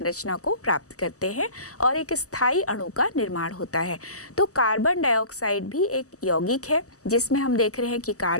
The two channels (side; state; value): right; late; 0.66 ms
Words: को प्राप्त करते हैं और एक स्थायी अणु का निर्माण होता है। तो कार्बन डाइऑक्साइड भी एक यौगिक है जिसमें हम देख रहे हैं कि